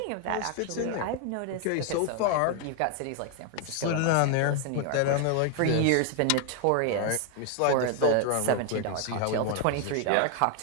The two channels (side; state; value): both; different; correlation 0.01